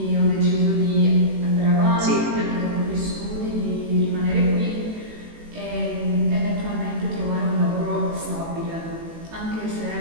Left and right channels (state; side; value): late; left; 18 ms